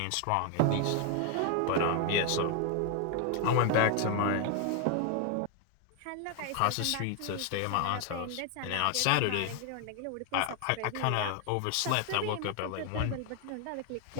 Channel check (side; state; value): both; different; correlation 0.01